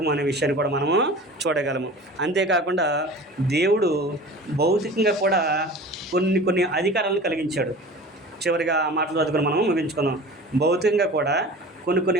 అనే విషయాన్ని కూడా మనము చూడగలము. అంతేకాకుండా దేవుడు భౌతికంగా కూడా కొన్ని అధికారాలను కలిగించాడు. చివరిగా ఆ మాటలు చదువుకుని మనం ముగించుకుందాం. భౌతికంగా కూడా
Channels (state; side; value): normal; both; correlation 0.39